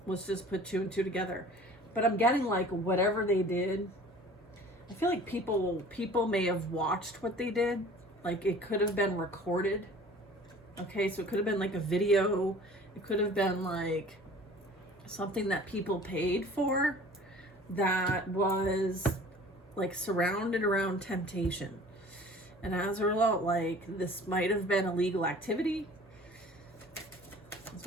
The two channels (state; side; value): normal; both; correlation 0.47